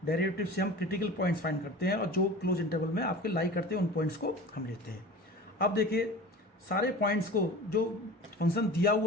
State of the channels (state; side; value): normal; both; correlation 0.37